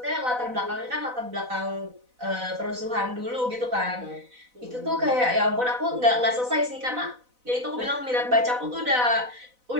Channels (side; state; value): left; late; 4.0 ms